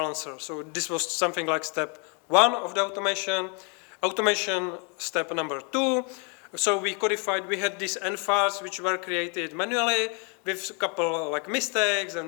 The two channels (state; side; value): quieter; right; 35.6 dB